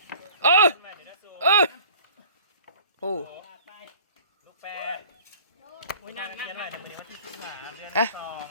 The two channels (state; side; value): inverted; both; correlation -0.48